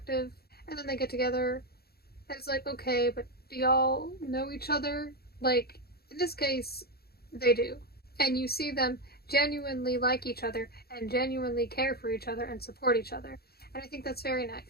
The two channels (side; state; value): right; late; 0.46 ms